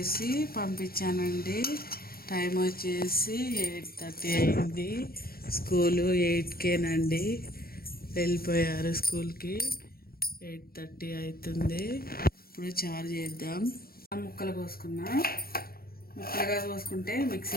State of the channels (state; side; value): late; right; 0.44 ms